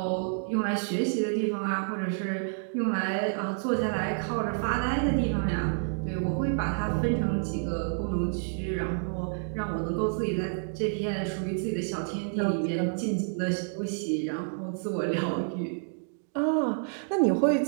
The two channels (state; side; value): silent; left; digital silence